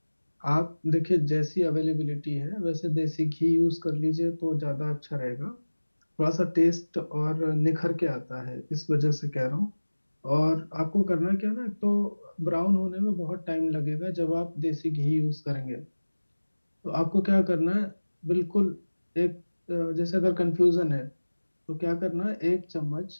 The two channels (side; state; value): both; inverted; correlation -1.00